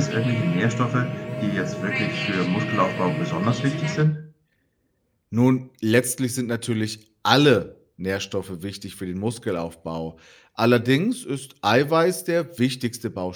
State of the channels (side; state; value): both; identical; correlation 1.00